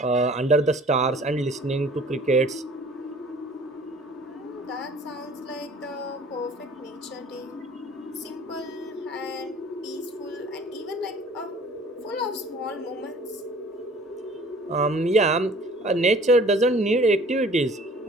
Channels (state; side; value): normal; both; correlation 0.50